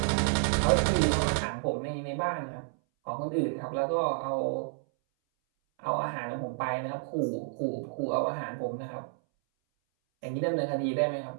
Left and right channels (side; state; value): left; silent; 58 dB below the other